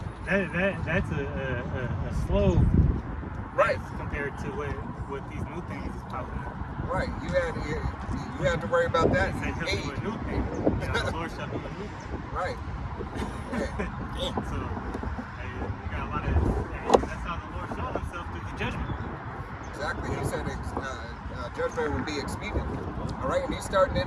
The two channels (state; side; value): identical; both; correlation 1.00